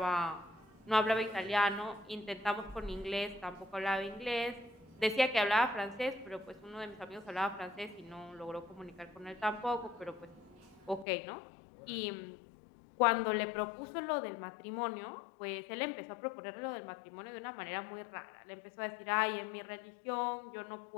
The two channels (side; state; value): right; drops out; at 11.1 s